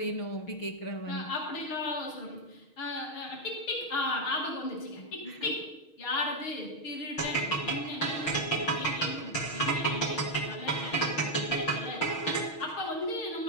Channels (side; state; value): right; late; 6.4 ms